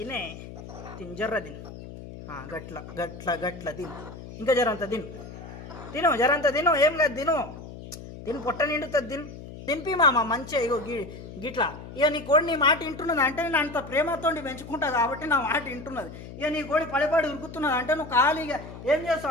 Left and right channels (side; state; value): left; noise; hum, 13 dB below the sound